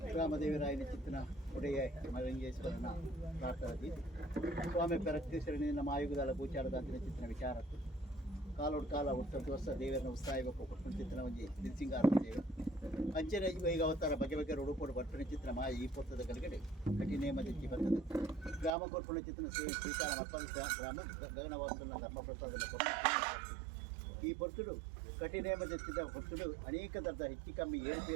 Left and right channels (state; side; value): drops out; left; at 18.8 s